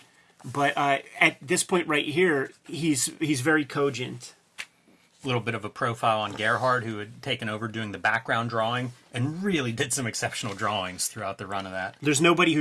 But at this point right here, he's very cogent. A little bit of a profile on Gerhard, who had taken over doing the background drawing and really did some exceptional drawings throughout the run of that. There's nobody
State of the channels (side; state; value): both; identical; correlation 1.00